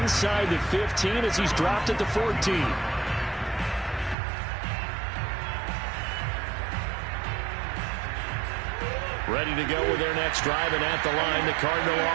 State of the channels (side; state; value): left; drops out; at 4.2 s